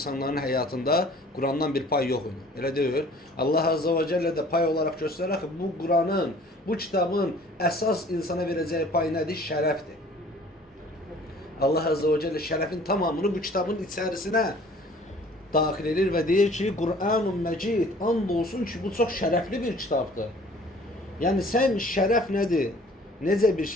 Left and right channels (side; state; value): both; normal; correlation 0.51